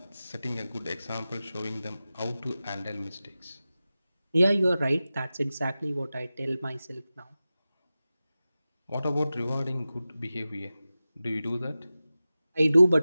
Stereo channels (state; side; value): inverted; both; correlation -0.95